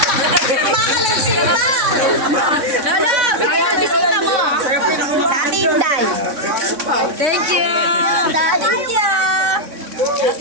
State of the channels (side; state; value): left; late; 3.6 ms